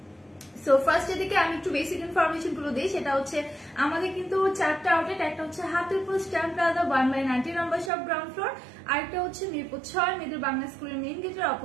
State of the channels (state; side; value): drops out; left; at 7.9 s